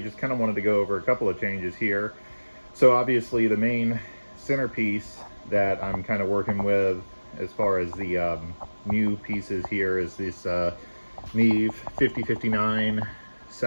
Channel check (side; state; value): both; inverted; correlation -1.00